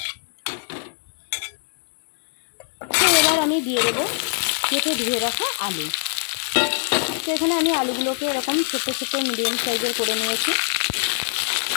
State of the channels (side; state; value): right; silent; digital silence